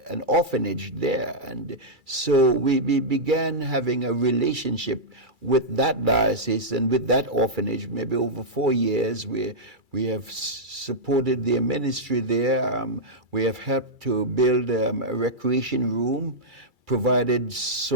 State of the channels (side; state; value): left; late; 2.3 ms